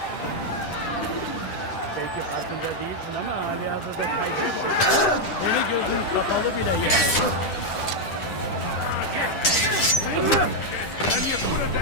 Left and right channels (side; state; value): right; late; 9.8 ms